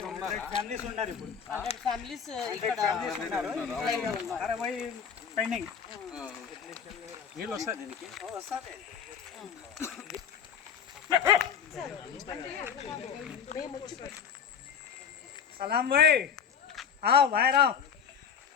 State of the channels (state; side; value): quieter; right; 7.3 dB